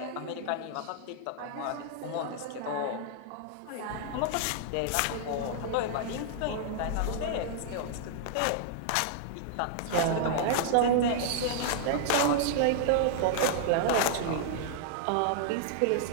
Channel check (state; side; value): different; both; correlation -0.01